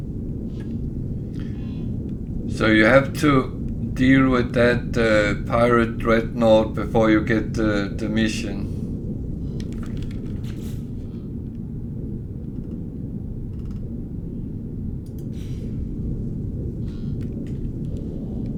So you have to deal with that pirate dreadnought before you get the mission.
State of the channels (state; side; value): identical; both; correlation 1.00